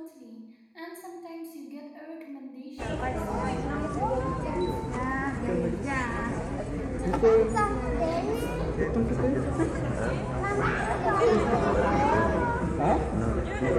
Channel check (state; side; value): identical; both; correlation 1.00